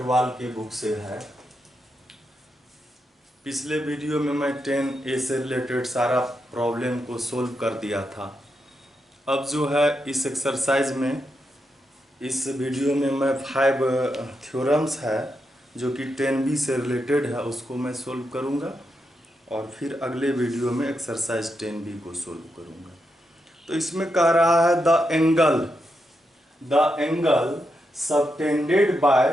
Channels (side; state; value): both; normal; correlation 0.84